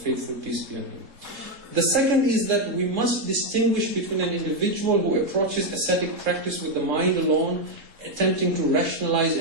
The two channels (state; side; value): late; left; 3.7 ms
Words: peace be on him. The second is that we must distinguish between an individual who approaches ascetic practice with the mind alone, attempting to rationalize